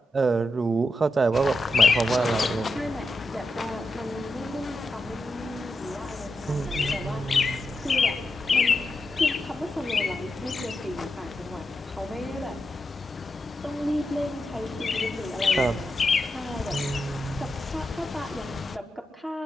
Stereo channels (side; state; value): both; normal; correlation 0.87